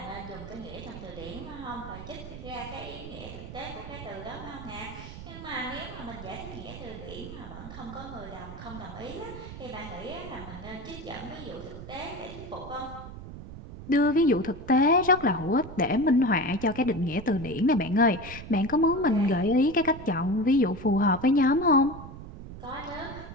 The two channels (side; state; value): right; noise; rumble, 12 dB below the sound